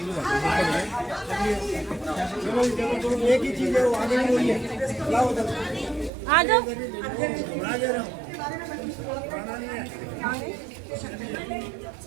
एक ही चीज है, वो आगे नहीं हुई है। आ जाओ।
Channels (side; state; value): left; drops out; at 6.1 s